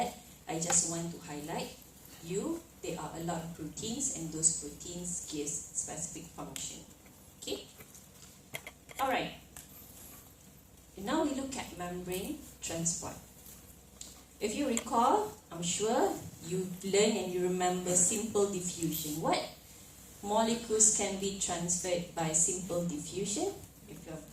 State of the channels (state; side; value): identical; both; correlation 1.00